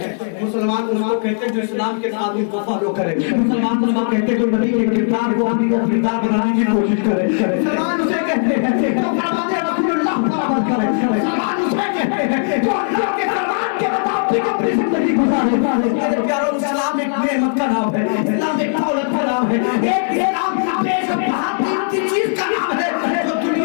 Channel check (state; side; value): silent; right; digital silence